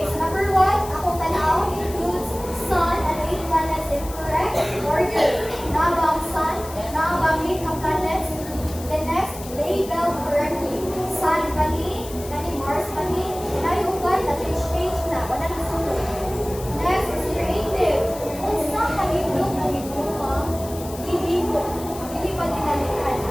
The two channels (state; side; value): noise; left; hiss, 15 dB below the sound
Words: so number 1, akong tanaw includes sun and 8 planets in correct order. Naabang sun, naabang 8 ka planets. Then next, label correctly. Sun pani, kani Mars pani, nayugan na change na, wala na sunod. Next is creative. Kung saan nag-ibig na ibig hindi ko, hindi pa dinalikan.